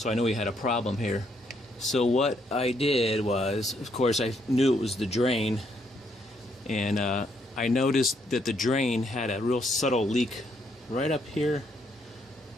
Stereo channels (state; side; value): normal; both; correlation 0.73